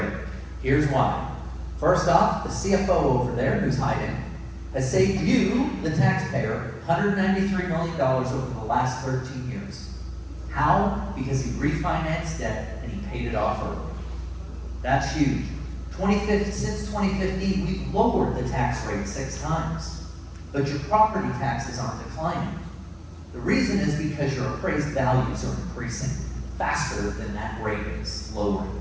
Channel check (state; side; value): identical; both; correlation 1.00